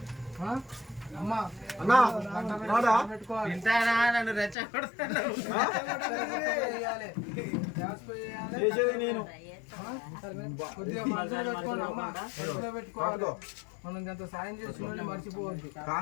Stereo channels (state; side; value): drops out; right; at 4.5 s